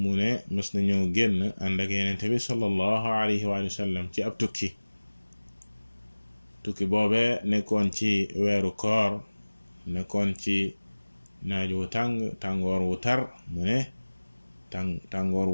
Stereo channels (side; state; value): both; inverted; correlation -1.00